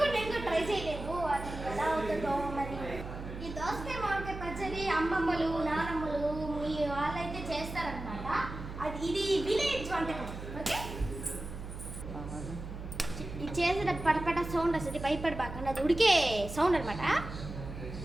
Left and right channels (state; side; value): noise; right; hum, 9 dB below the sound